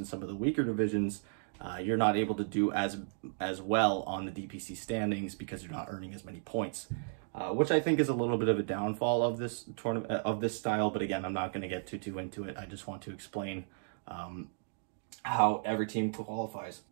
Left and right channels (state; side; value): silent; left; digital silence